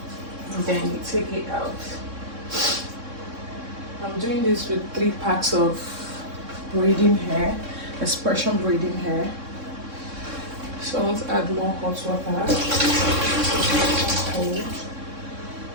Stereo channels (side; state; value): left; late; 3.6 ms